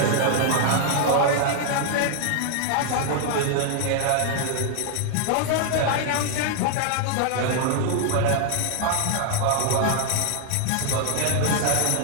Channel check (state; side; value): different; both; correlation 0.00